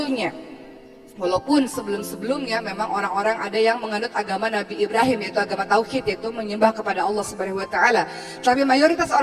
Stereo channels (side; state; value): both; identical; correlation 1.00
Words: Walaupun sebelum-sebelumnya memang orang-orang ada yang menganut agama Nabi Ibrahim, yaitu agama Tauhid, yaitu menyembah kepada Allah Subhanahu wa Ta'ala. Tapi mayoritas